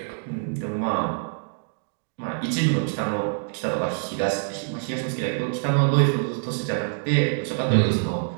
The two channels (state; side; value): silent; left; digital silence